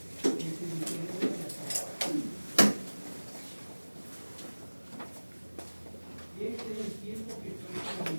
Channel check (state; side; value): inverted; both; correlation -1.00